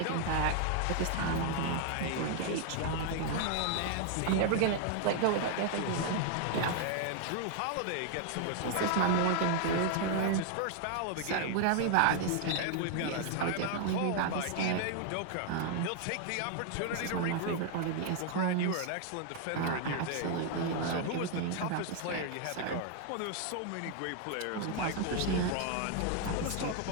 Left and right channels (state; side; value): different; both; correlation 0.00